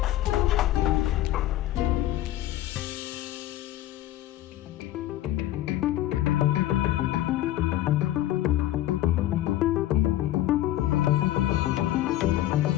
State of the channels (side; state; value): right; quieter; 13.9 dB